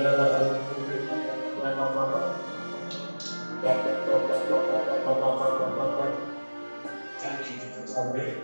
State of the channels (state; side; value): inverted; both; correlation -1.00